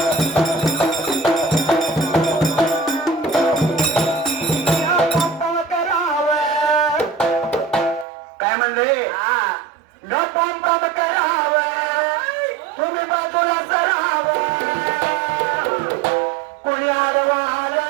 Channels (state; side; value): drops out; left; at 8.1 s